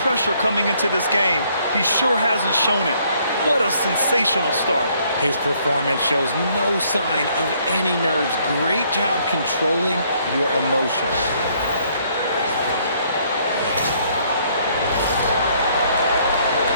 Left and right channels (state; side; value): inverted; both; correlation -0.66